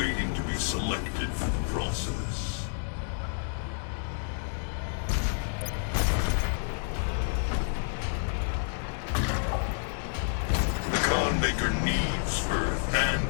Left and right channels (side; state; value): right; silent; digital silence